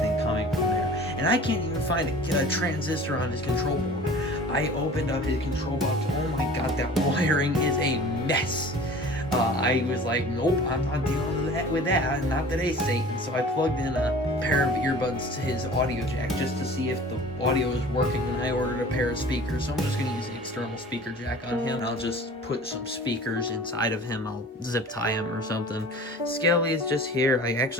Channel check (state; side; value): normal; both; correlation 0.43